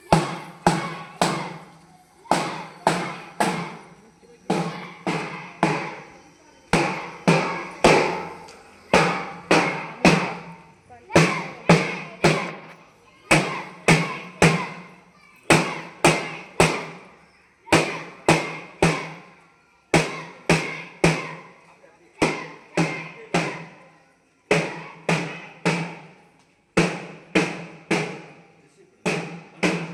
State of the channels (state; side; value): identical; both; correlation 1.00